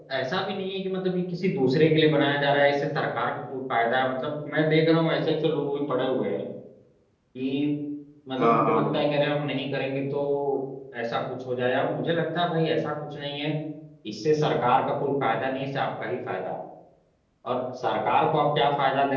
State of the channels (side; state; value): both; identical; correlation 1.00